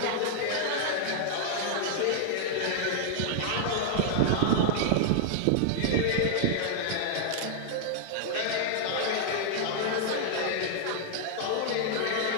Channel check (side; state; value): both; different; correlation -0.01